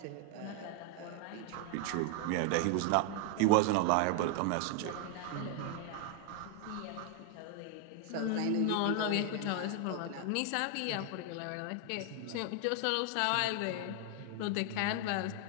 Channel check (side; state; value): both; different; correlation 0.00